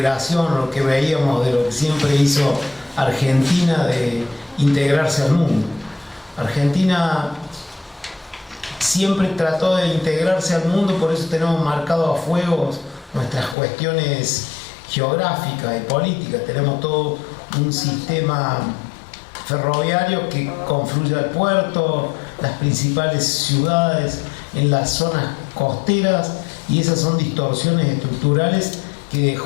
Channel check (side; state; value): right; drops out; at 13.6 s